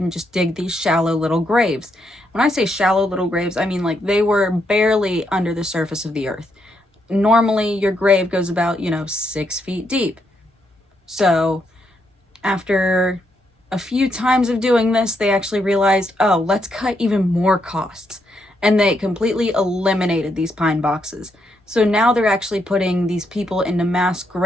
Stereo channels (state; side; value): normal; both; correlation 0.78